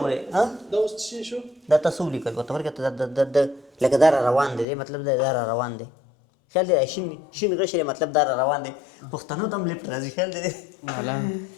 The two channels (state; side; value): drops out; right; at 4.7 s